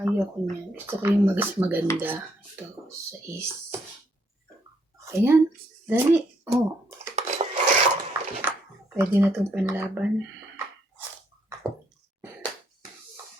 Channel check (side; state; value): both; normal; correlation 0.72